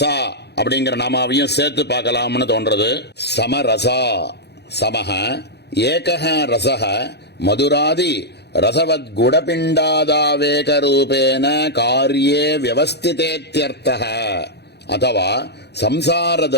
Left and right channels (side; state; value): right; late; 0.48 ms